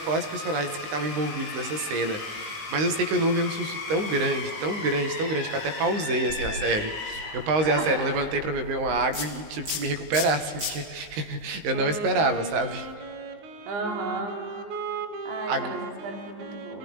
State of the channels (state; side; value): late; left; 19 ms